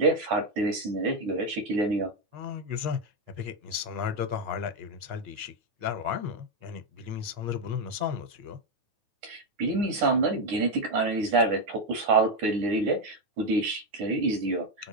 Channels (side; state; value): left; late; 9.8 ms